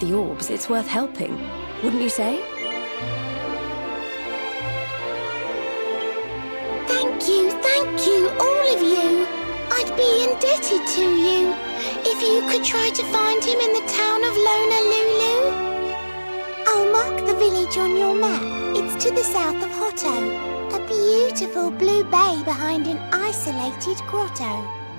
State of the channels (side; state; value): both; inverted; correlation -1.00